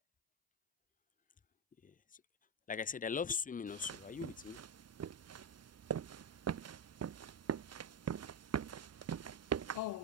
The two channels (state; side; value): normal; both; correlation 0.09